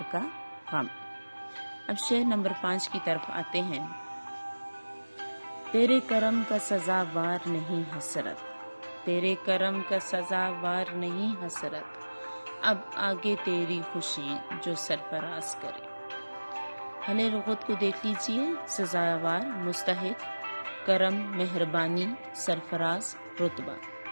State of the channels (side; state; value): both; inverted; correlation -1.00